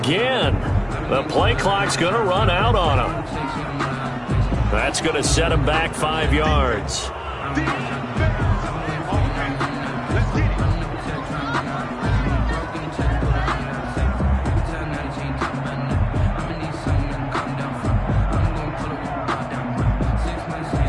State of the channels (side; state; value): both; identical; correlation 1.00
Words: the play clock's going to run out on him. That's going to set him back 5 yards.